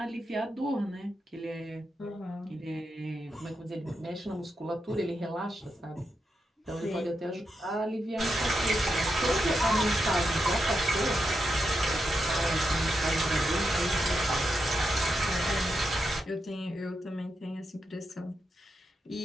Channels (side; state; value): both; normal; correlation 0.86